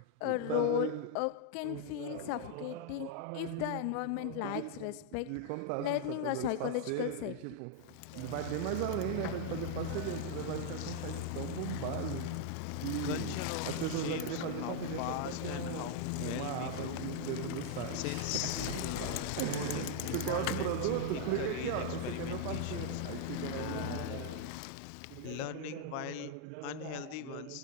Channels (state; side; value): different; both; correlation 0.00